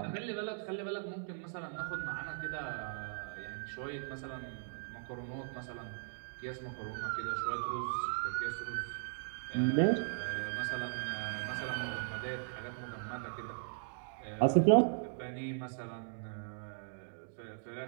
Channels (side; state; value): left; silent; digital silence